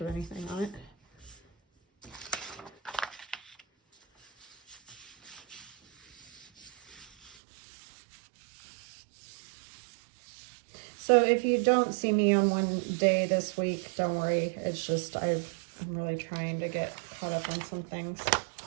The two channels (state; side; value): drops out; left; at 7.4 s